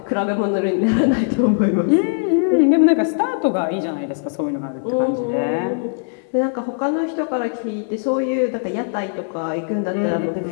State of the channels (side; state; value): right; silent; 66 dB below the other